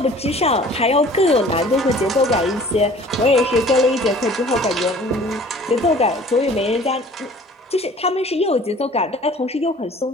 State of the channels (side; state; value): both; normal; correlation 0.49